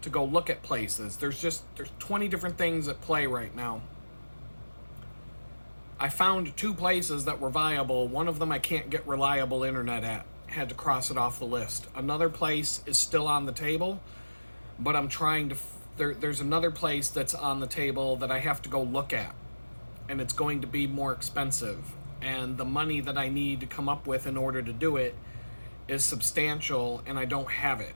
to go look at places. There's 20 different things at play right now. I found 2 places that were viable. One of them I can't get reliable internet at. Had to cross it off the list. Another place is still on the table, but I'm trying to... There's another place that's on the table that I have to go look at, and it's going to be more expensive. And the money that I need to come up with in order to do it is substantial, and I don't have it.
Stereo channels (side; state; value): both; inverted; correlation -1.00